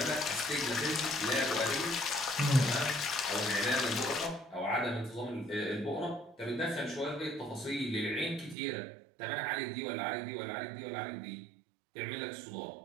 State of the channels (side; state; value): left; drops out; at 8.6 s